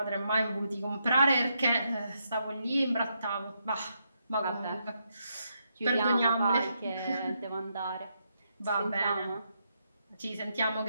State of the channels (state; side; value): inverted; both; correlation -0.80